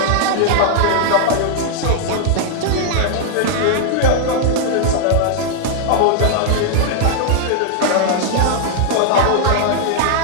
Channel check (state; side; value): different; both; correlation -0.01